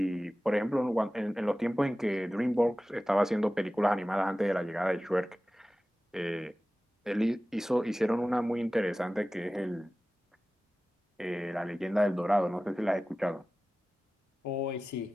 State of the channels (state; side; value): normal; both; correlation 0.96